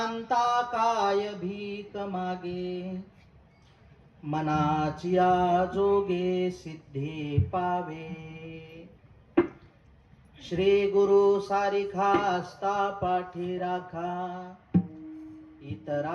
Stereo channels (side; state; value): both; identical; correlation 1.00